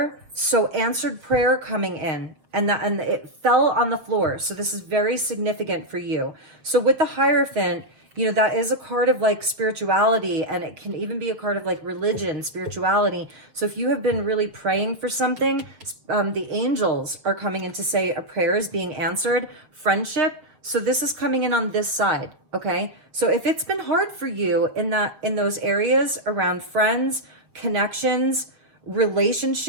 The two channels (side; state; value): left; late; 6.8 ms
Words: so answered prayer coming in, and it fell on the floor. So this is very significant for you. So with the Hierophant, you know, that is a card of like spirituality, and it can even be a card of like religion, spirituality. So if you have been really praying for something, the angels are coming in to say a prayer is being answered. Friendship. So this is coming in on this side, okay? So if it's been hard for you in those areas around friends, connections,